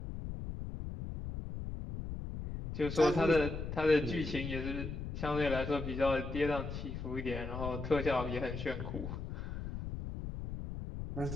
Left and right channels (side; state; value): left; noise; rumble, 6 dB below the sound